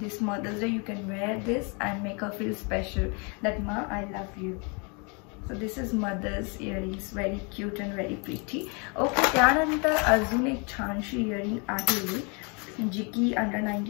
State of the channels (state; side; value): quieter; right; 33.4 dB